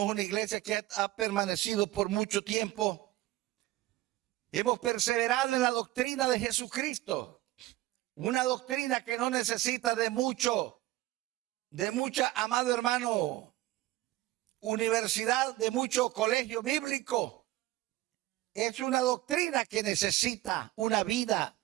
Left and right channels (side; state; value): left; quieter; 16.9 dB